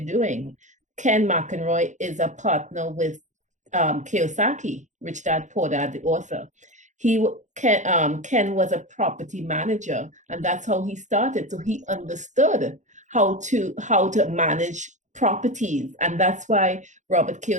Yeah. Ken McEnroy is a partner with Yep. Kiyosaki, Rich Yeah. Dad Poor Dad, the He is. author. Yeah. Yeah. Ken was a property manager, and Yeah. that's how he started. So he Exactly. understood Yes. how to manage properties, Yep. and that's why Robert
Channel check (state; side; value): late; left; 0.35 ms